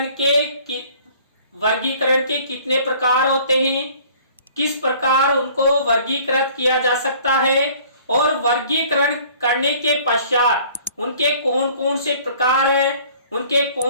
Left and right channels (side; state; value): both; inverted; correlation -0.53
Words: के वर्गीकरण के कितने प्रकार होते हैं, किस प्रकार उनको वर्गीकृत किया जा सकता है और वर्गीकरण करने के पश्चात उनके कौन कौन से प्रकार हैं, उनके